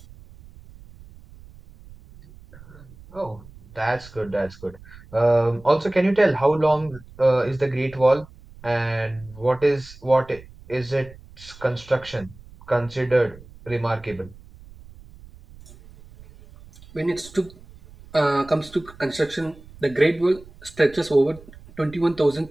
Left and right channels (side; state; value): right; noise; rumble, 21 dB below the sound